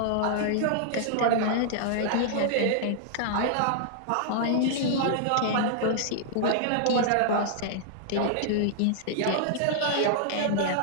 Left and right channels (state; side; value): different; both; correlation -0.01